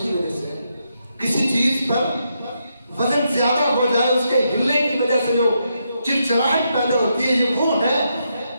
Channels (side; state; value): both; inverted; correlation -0.81